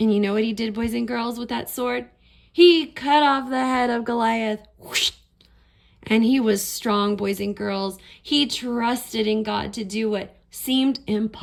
And you know what he did, boys and girls, with that sword? He cut off the head of Goliath. And he was strong, boys and girls. He trusted in God to do what seemed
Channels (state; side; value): identical; both; correlation 1.00